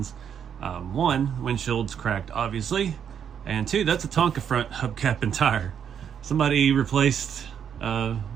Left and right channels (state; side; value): quieter; left; 8.2 dB